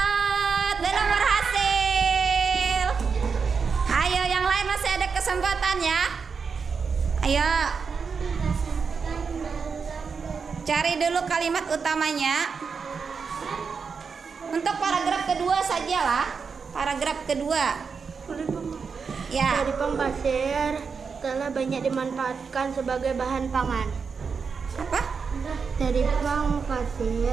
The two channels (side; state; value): left; quieter; 5.6 dB